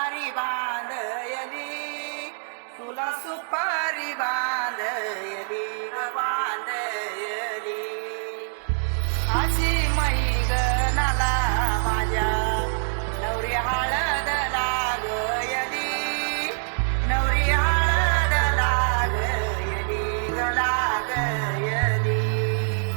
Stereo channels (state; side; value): silent; left; digital silence